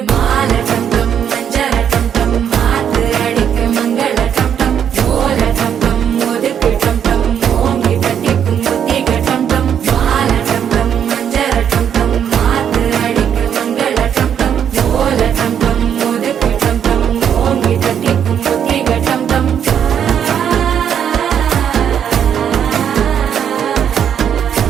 மாலை டம் டம் மஞ்சள டம் டம் மாத்து அடிக்கு மங்கள டம் டம் ஓல டம் டம் ஒதுக்கு டம் டம் ஓங்கி தட்டிக்கும் புத்திக டம் டம் மாலை டம் டம் மஞ்சள டம் டம் மாத்து அடிக்கு மங்கள டம் டம் ஓல டம் டம் ஒதுக்கு டம் டம் ஓங்கி தட்டிக்கும் புத்திக டம் டம்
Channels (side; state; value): left; quieter; 8.7 dB